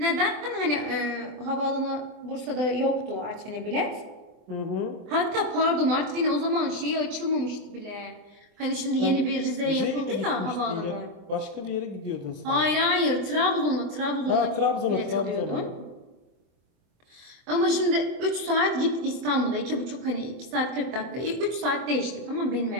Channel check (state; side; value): late; left; 24 ms